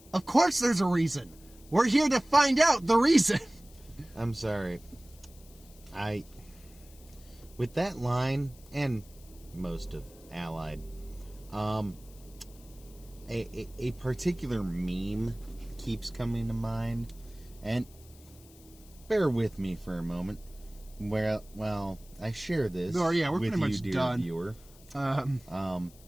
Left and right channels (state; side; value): noise; left; hiss, 24 dB below the sound